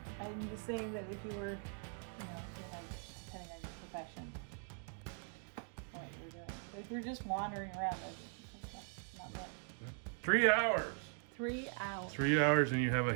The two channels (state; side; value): silent; left; 50 dB below the other